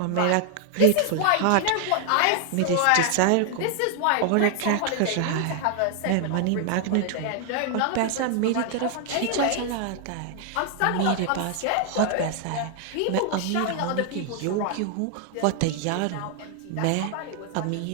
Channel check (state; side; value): different; both; correlation 0.00